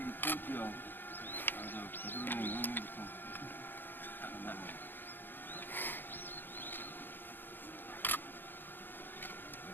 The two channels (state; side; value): late; right; 0.096 ms